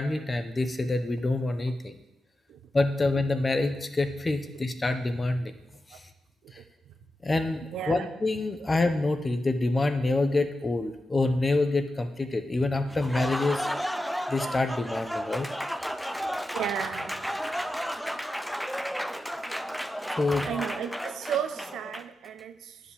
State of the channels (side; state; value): both; normal; correlation 0.90